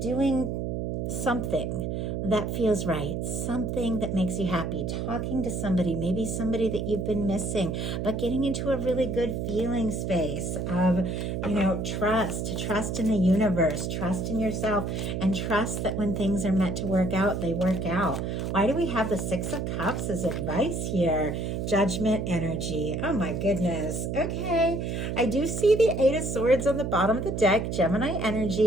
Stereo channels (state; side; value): noise; right; hum, 2 dB below the sound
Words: something that feels right, something that makes you happy, talking to somebody, maybe somebody that you've been missing, but getting into a really good feeling space of, trust in the universe, trust in yourself, and trust that when things are meant to work out, they work out. Why do we have the Six of Cups as advice here? Judgment energy. Oh my goodness. Okay. I do see the Eight of Swords on the bottom of the deck. Gemini